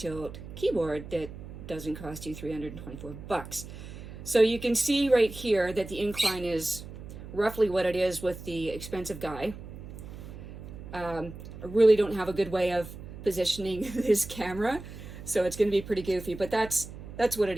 keyboard that doesn't cost you $324. So you can see right here that the incline is roughly what it is with the expensive guy. I really don't have a good way of positioning this camera, so it's going to be pretty goofy, but that's what it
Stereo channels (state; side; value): noise; right; hum, 12 dB below the sound